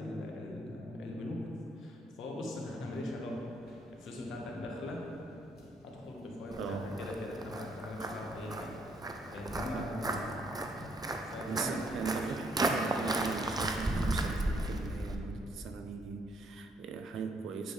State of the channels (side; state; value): both; normal; correlation 0.69